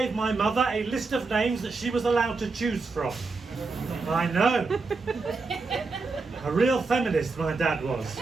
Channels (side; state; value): left; quieter; 4.0 dB